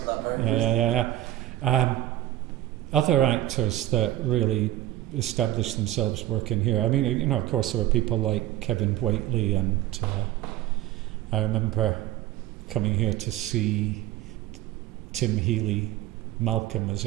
Yeah. Other actors that really established themselves working here. I mean, you know, of course, there were people like Kevin Whately, and I remember coming here to see Tim Healy, Malcolm, as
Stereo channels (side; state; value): left; quieter; 14.6 dB